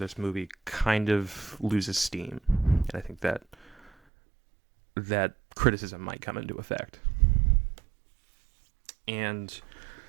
movie kind of loses steam. And I think that criticism might come into effect. And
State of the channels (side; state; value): left; drops out; at 3.9 s